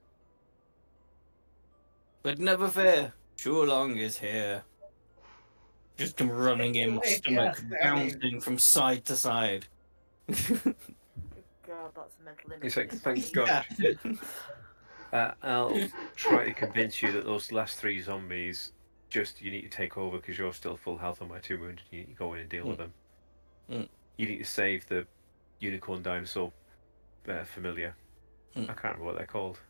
But never fear, Shulong is here. Just come running in, my stomach bouncing from side to side. God, that's a mental image. He's like, It's thank not God. I'll try to convince you that those last 3 zombies, you need to take over because you're still full health on my 2 wounded. You need to go in and deal with them. You need to save the unicorn dinosaur familiar. I can't remember what they're called.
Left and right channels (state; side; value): inverted; both; correlation -1.00